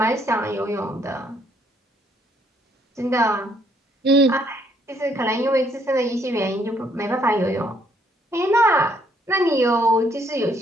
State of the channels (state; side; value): normal; both; correlation 0.68